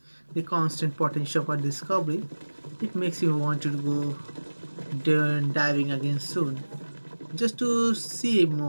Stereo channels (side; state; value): both; inverted; correlation -1.00